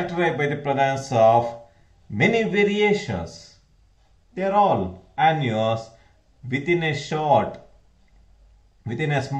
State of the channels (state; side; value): identical; both; correlation 1.00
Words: by the presence of many variations. They are all annuals within a small